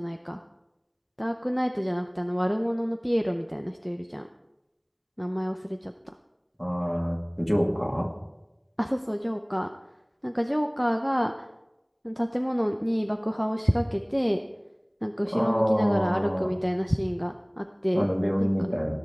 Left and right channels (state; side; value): identical; both; correlation 1.00